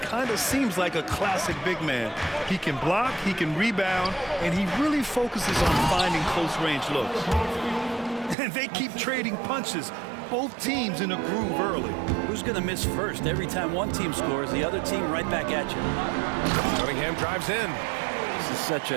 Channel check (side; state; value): left; drops out; at 8.3 s